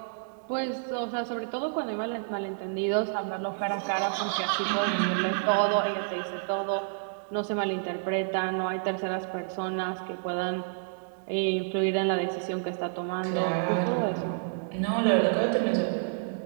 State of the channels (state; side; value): silent; left; digital silence